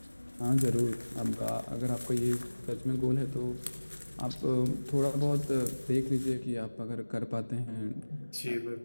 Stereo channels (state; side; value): inverted; both; correlation -1.00